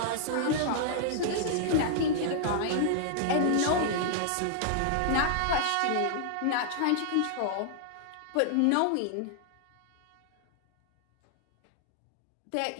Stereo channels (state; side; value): different; both; correlation -0.01